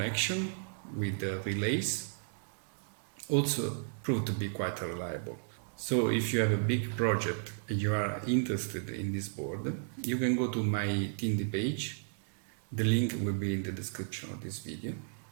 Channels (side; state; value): left; silent; digital silence